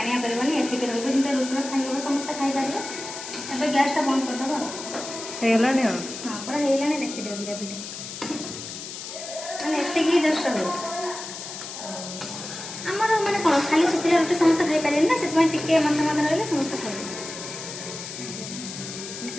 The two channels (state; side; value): noise; left; hiss, 9 dB below the sound